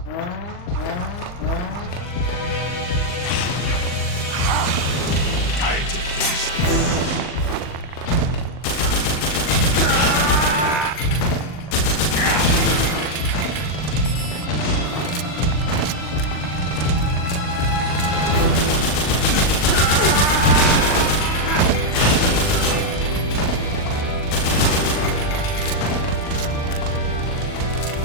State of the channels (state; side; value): late; right; 40 ms